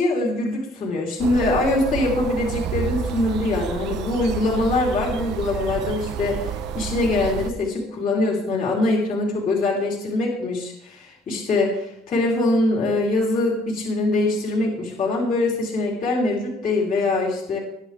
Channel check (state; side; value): normal; both; correlation 0.60